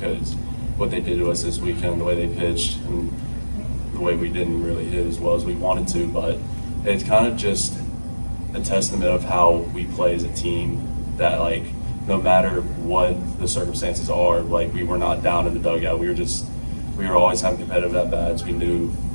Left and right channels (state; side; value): inverted; both; correlation -1.00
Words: what they did to us this weekend, the way they pitched, and the way we didn't really hit as well as we wanted to, but it's kind of just a testament of how we play as a team, that like no matter what the circumstances are, like we were not down in the dugout. We were always having competitive at bats. We knew